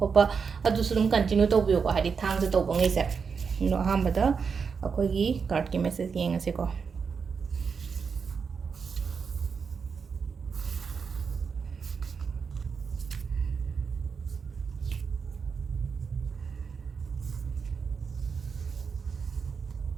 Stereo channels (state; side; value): quieter; left; 5.8 dB